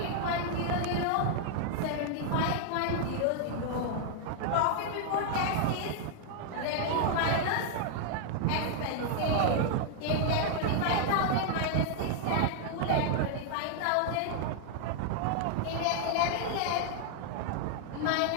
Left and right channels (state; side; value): different; both; correlation 0.00